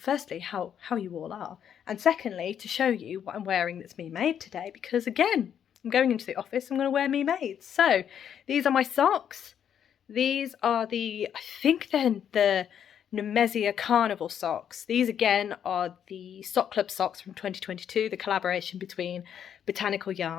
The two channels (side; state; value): right; quieter; 8.9 dB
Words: how you all are. And secondly, to show you what I'm wearing that's me made today. Because again, I'm going into the office, I'm going to wear me made. So, these are my socks. These are I think they're the Nemesia Carnival socks. These again are the Sock Club socks from 2022, the collaboration between Botanical